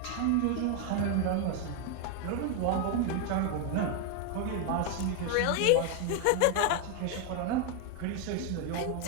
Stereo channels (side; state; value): both; different; correlation 0.01